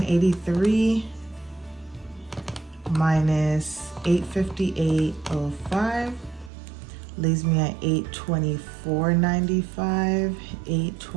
minus $858.05 leaves me at $824.95.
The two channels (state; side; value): drops out; left; at 6.5 s